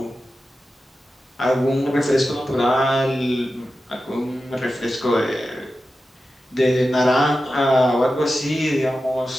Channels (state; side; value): normal; both; correlation 0.92